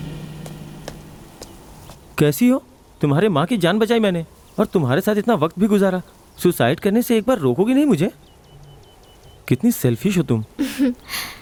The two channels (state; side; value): identical; both; correlation 1.00